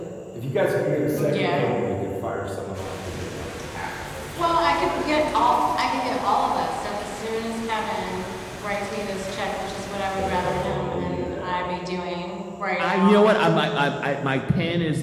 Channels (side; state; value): both; identical; correlation 1.00